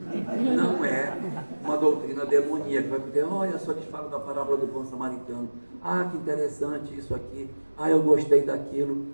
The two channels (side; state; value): both; inverted; correlation -1.00